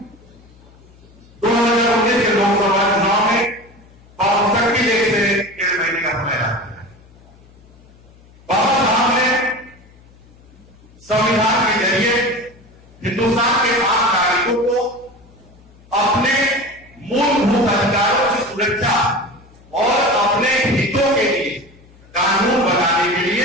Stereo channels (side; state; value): left; noise; hum, 26 dB below the sound